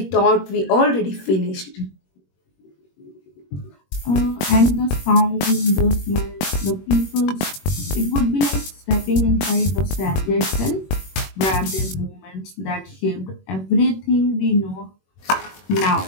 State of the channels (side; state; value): right; late; 21 ms